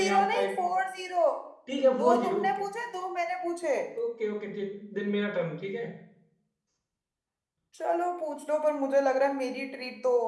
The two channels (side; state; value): both; identical; correlation 1.00